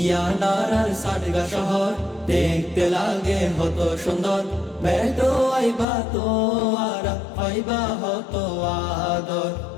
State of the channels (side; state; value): right; drops out; at 5.9 s